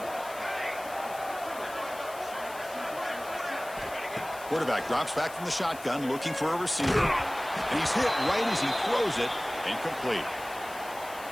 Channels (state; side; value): noise; left; hiss, 17 dB below the sound